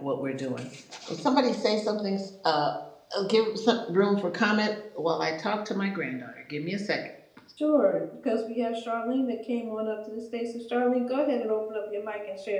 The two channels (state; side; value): identical; both; correlation 1.00